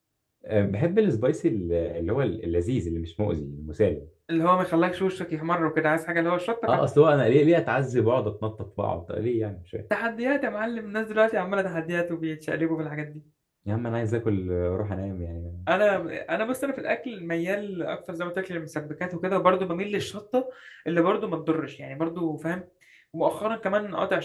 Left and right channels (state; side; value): identical; both; correlation 1.00